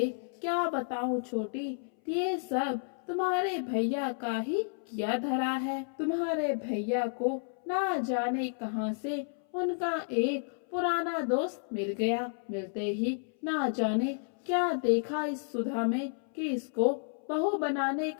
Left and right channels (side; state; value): right; silent; 57 dB below the other